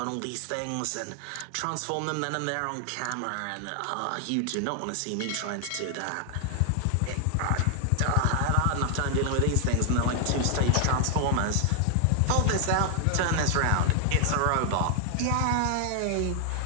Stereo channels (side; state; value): both; different; correlation 0.00